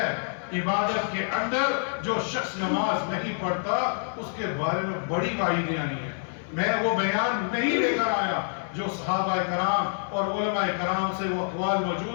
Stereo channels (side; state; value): right; silent; 57 dB below the other